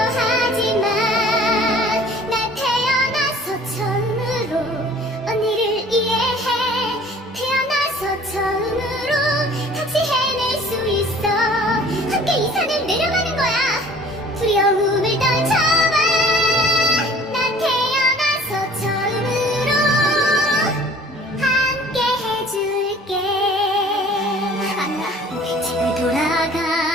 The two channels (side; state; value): both; normal; correlation 0.50